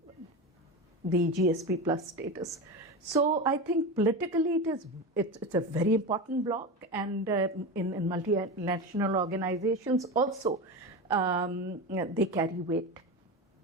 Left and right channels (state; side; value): normal; both; correlation 0.22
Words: the GSP Plus status. So I think politically it's a very important bloc, and in multinational organizations also they carry weight,